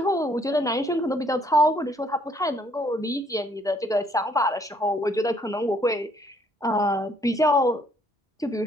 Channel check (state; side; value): normal; both; correlation 0.65